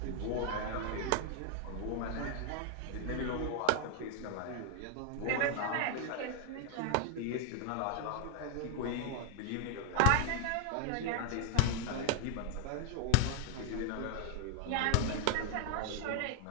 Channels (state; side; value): different; both; correlation 0.00